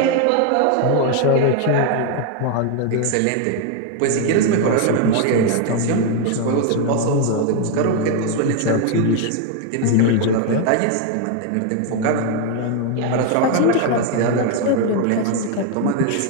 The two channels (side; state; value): both; different; correlation 0.01